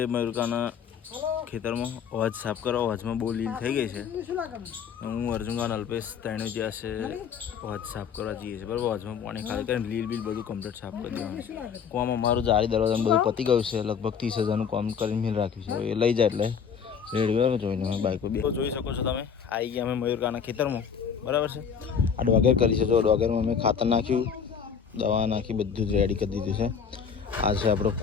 મયુરકાના ખેતરમાં અવાજ સાફ કરવા. અવાજમાં બહુ લીલ થઈ ગઈ છે. હું અર્જુનખાન અલ્પેશ ત્રણે જ્યાં છે અવાજ સાફ કરવા જઈએ છીએ બરાબર. અવાજમાં પાણી ખાલી કરીને લીલ બિલ બધું કમ્પ્લીટ સાફ કરી દેવાનું. કોમ અમારું જારી દરવાજાનું બધું પતી ગયું છે. લગભગ 30,000નું કામ કરીને મિલ રાખ્યું છે. એ લઈ જાય એટલે રેડી બરાબર. જોઈને અમે બાઇકો બી જોઈ શકો છો તમે. આવી ગયા અમે મયુરકાના ખેતરમાં બરાબર છે. આ ડોગેર કરી છે. જો ડોગેરમાં અમે ખાતર નાખ્યું, દવા નાખી, બધું જ રેડી કરી દીધું છે. આ છે આપણો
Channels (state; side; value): quieter; right; 6.9 dB